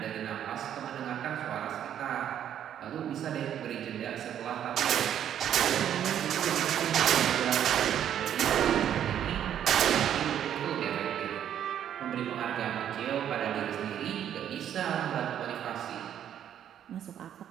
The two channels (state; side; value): quieter; left; 10.0 dB